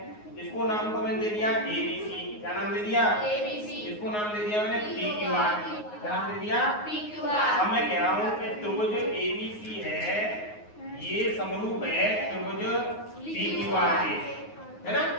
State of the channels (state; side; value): late; right; 9.5 ms